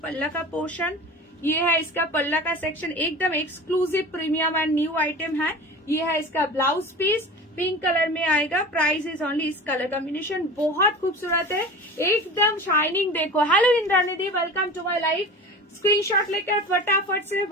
पल्ला का पोर्शन, ये है इसका पल्ला का सेक्शन, एकदम exclusive premium and new item है। ये है इसका ब्लाउज पीस, पिंक कलर में आएगा। प्राइस इज ओनली, इस कलर कॉम्बिनेशन बहुत खूबसूरत है, एकदम शाइनिंग। देखो, हेलो इंद्रानिधि, welcome to my life. Screenshot लेकर फटाफट से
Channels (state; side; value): normal; both; correlation 0.35